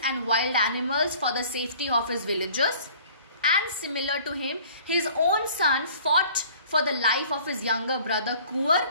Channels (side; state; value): both; inverted; correlation -0.51